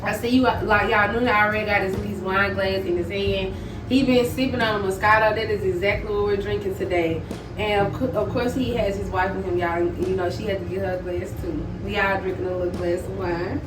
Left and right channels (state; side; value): identical; both; correlation 1.00